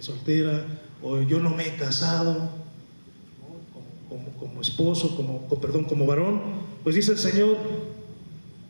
soltera, o yo no me he casado, ¿no? Como esposo, como varón. Pues dice el Señor,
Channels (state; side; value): inverted; both; correlation -1.00